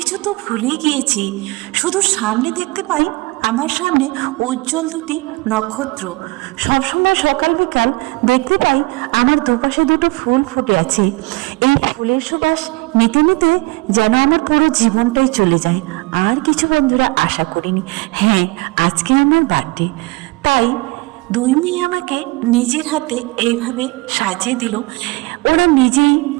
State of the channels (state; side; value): quieter; left; 23.9 dB